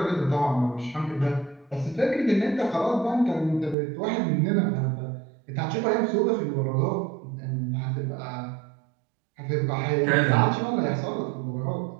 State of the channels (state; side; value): drops out; left; at 3.8 s